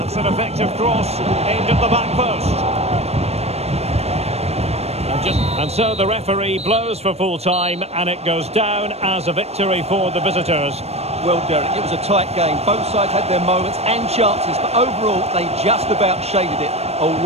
An effective cross aimed at the back post. And so the referee blows for full time, and it goes down as a victory for the visitors. Well, Derek, it was a tight game. Both sides had their moments and chances, but overall they just about shaded it. A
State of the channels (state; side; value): late; left; 0.31 ms